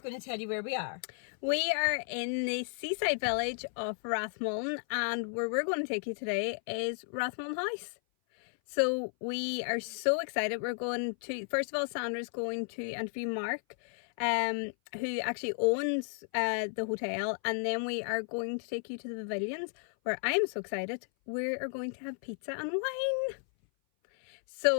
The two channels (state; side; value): silent; right; 55 dB below the other